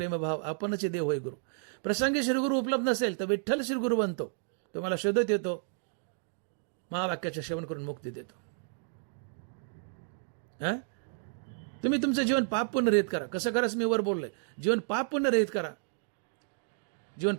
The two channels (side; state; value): left; silent; digital silence